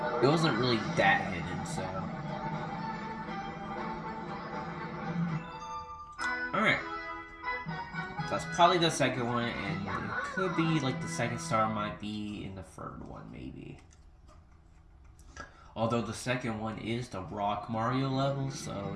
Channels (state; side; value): identical; both; correlation 1.00